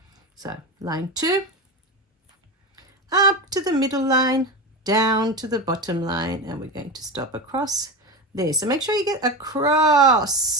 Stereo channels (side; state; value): both; normal; correlation 0.21